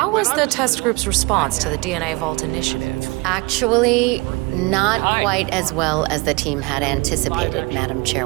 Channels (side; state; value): left; quieter; 25.2 dB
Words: was the test group's response to the DNA Vault initiative? Actually, not quite as well as the team had anticipated, Madam